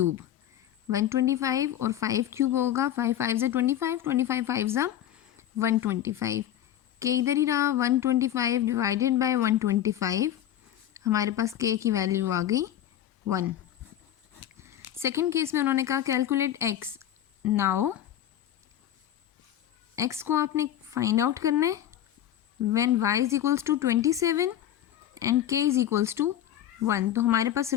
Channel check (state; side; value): quieter; right; 11.4 dB